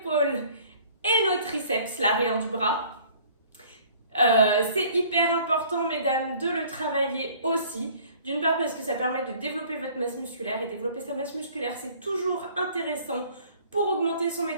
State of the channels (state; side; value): inverted; both; correlation -0.53